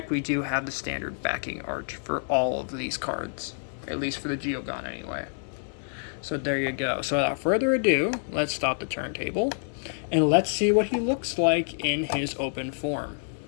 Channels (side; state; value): right; silent; 60 dB below the other